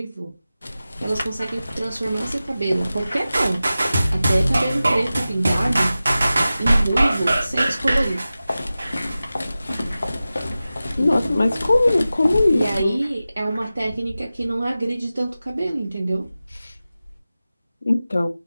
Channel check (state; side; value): inverted; both; correlation -0.95